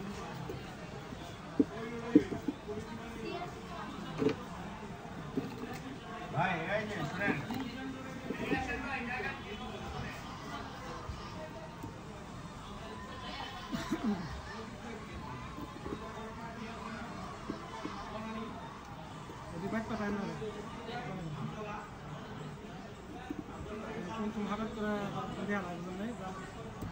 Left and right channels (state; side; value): identical; both; correlation 1.00